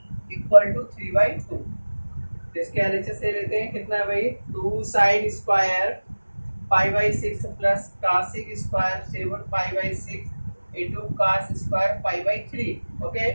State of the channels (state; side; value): inverted; both; correlation -1.00